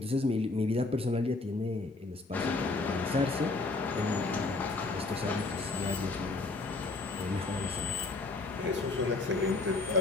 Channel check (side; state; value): right; quieter; 3.5 dB